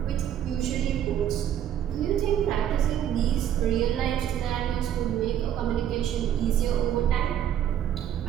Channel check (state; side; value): quieter; left; 10.3 dB